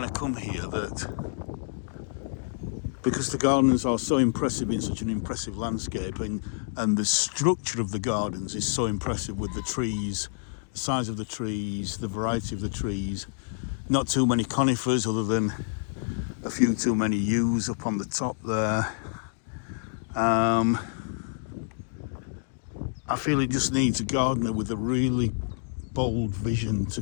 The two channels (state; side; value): silent; right; digital silence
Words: I come here that because the gardens are so impressive in such an impressive landscape, and the structure of the gardens is so impressive with the trees, the size of the trees, the variety of the trees, not too many conifers other than a few too many yews up on the top there. I feel it just needs a gardener with a really bold vision to